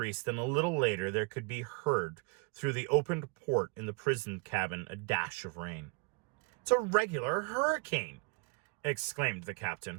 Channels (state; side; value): quieter; left; 31.8 dB